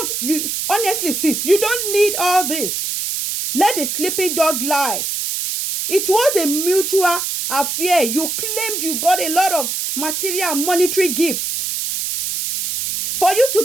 Honestly, sis, you don't need all this. Let the sleeping dog lie. It was a mutual affair. You claimed you got a lot of material and monetary gifts. For you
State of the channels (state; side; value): noise; right; hiss, 2 dB below the sound